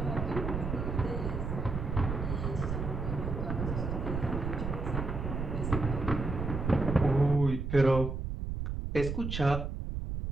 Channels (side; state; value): right; noise; rumble, 3 dB below the sound